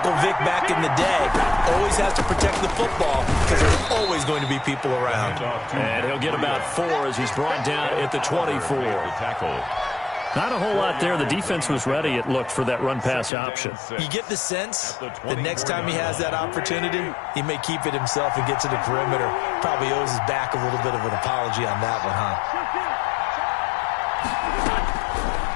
Vick back in the day. Always has to protect the football because there's always going to be people around. And he'll get about 4 as he's brought down at the 24. Not a whole lot there. The defense was ready, it looked, for that run-pass option. You get the sense that next time he has that opportunity, he may keep it himself and get to the perimeter. Probably owes his back a little bit of an apology on that one, huh?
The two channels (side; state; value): right; drops out; at 13.3 s